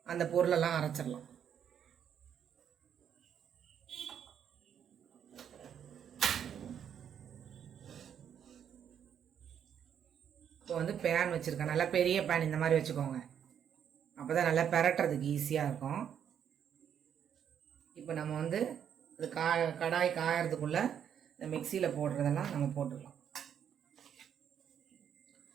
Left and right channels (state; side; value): quieter; left; 8.7 dB